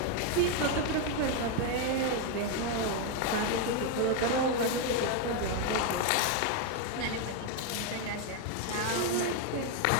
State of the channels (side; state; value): both; different; correlation 0.01